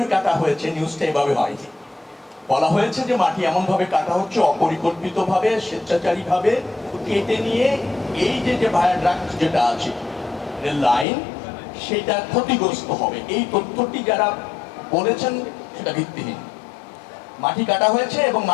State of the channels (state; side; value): drops out; right; at 11.1 s